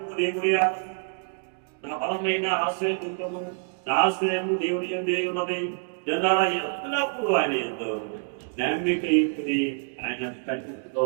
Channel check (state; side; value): silent; left; digital silence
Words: దేవుడియా నా బలమైన ఆశ్రయ దుర్గము నా ఆశ్రయము దేవుడి దేవుడని జనాల ఎల్లప్పుడూ ఆయన ఎంతో నమ్మిక ఇచ్చుడి ఆయన సత్యంతో